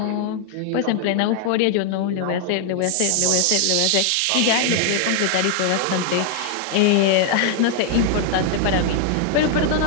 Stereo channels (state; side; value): different; both; correlation 0.00